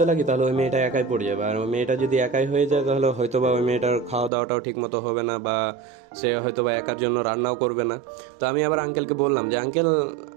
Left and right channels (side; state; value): left; drops out; at 4.3 s